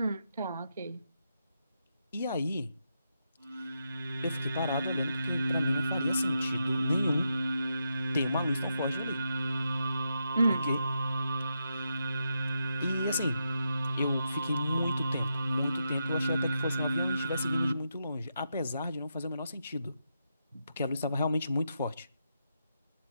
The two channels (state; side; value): inverted; both; correlation -0.84